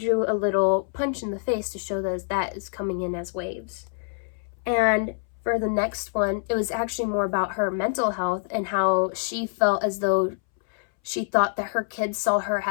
a little punch in the face to show that is coming in as waves. And for the next one, it was actually more about her mental health and how she felt as though she thought that her kids saw her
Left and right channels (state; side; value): silent; right; 61 dB below the other